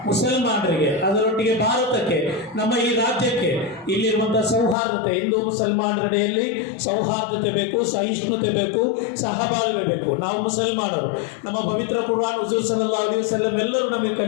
ಮುಸಲ್ಮಾನರಿಗೆ, ಅದರೊಟ್ಟಿಗೆ ಭಾರತಕ್ಕೆ, ನಮ್ಮ ಈ ರಾಜ್ಯಕ್ಕೆ ಇಲ್ಲಿರುವಂತಹ ಸೌಹಾರ್ದತೆ, ಹಿಂದೂ ಮುಸಲ್ಮಾನರೆಡೆಯಲ್ಲಿ ಸೌಹಾರ್ದತೆ ಬೇಕು, ಸಹಿಷ್ಣುತೆ ಬೇಕು, ಸಹಬಾಳ್ವೆ ಬೇಕು. ನಾವು ಮುಸಲ್ಮಾನರು, ನಮ್ಮ ಪವಿತ್ರ ಕುರ್ಆನ್ ಹುಜೂರ್ ಸಲ್ಲಲ್ಲಾಹು ಅಲೈಹಿ ವಸಲ್ಲಂ ಎಲ್ಲರೂ ನಮಗೆ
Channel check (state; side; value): drops out; right; at 4.8 s